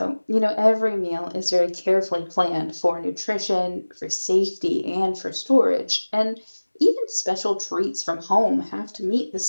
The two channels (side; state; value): both; inverted; correlation -1.00